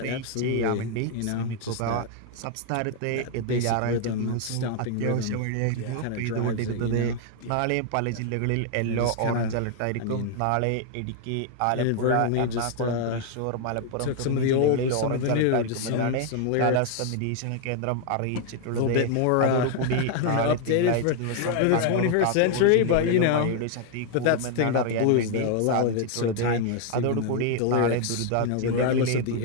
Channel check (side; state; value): both; different; correlation 0.00